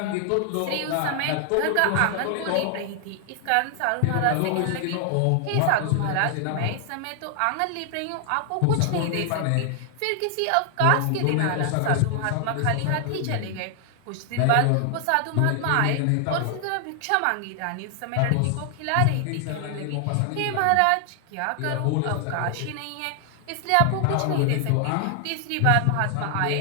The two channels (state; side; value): different; both; correlation 0.00